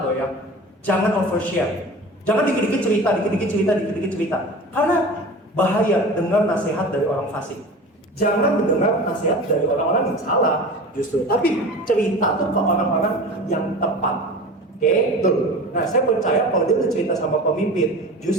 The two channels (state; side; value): normal; both; correlation 0.35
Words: loh ya. Jangan overshare. Jangan dikit-dikit cerita. Karena bahaya dengar nasihat dari orang fasik. Jangan mendengar nasihat dari orang-orang yang salah justru. Tapi cerita tuh ke orang-orang yang tepat. Oke, Betul. Nah, saya percaya kalau dia udah cerita sama pemimpin,